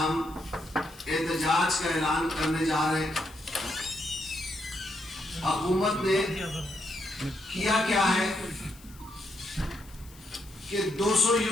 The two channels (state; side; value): noise; left; hiss, 23 dB below the sound